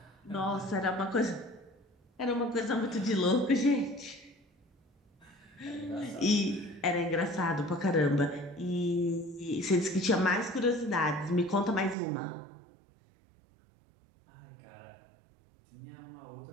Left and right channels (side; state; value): left; drops out; at 12.0 s